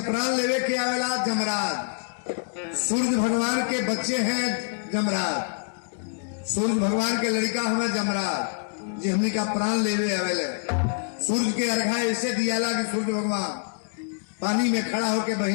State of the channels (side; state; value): right; silent; digital silence